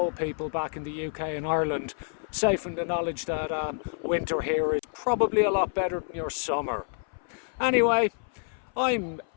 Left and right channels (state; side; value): silent; right; 57 dB below the other